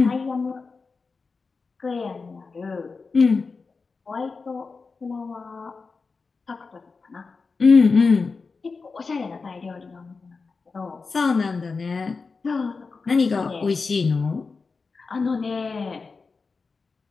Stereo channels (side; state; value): right; quieter; 4.5 dB